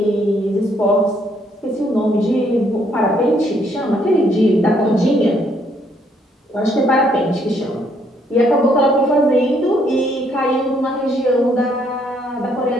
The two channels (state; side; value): normal; both; correlation 0.69